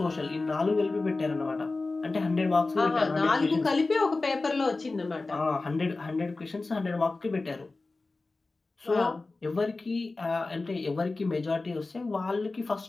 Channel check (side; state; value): right; quieter; 3.4 dB